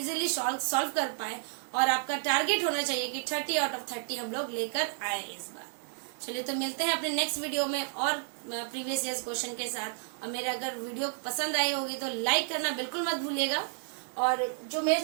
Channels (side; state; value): left; silent; 57 dB below the other